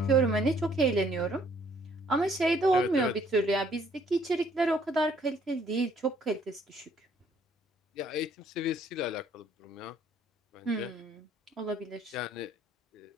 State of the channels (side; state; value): both; normal; correlation 0.63